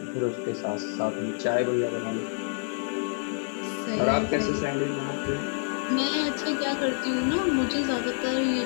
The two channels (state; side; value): silent; right; 60 dB below the other